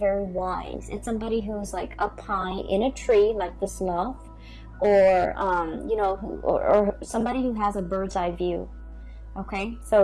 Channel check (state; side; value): identical; both; correlation 1.00